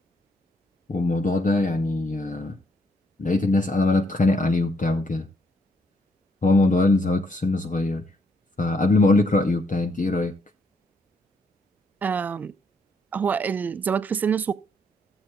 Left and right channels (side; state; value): both; normal; correlation 0.72